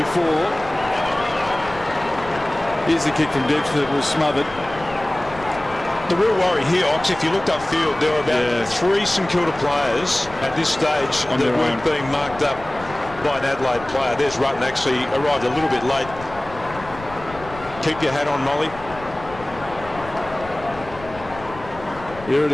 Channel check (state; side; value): noise; left; rumble, 16 dB below the sound